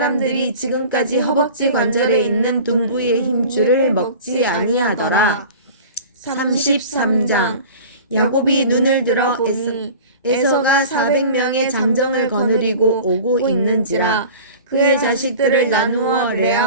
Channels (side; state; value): both; inverted; correlation -0.40